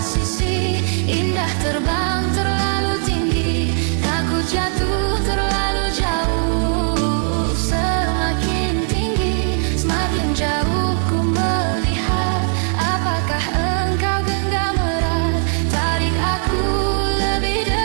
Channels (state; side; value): silent; left; 56 dB below the other